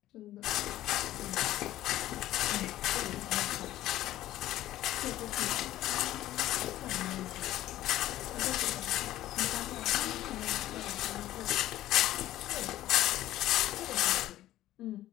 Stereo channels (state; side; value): quieter; right; 14.4 dB